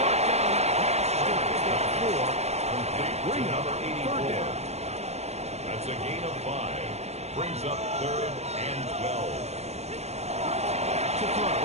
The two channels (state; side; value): late; left; 0.31 ms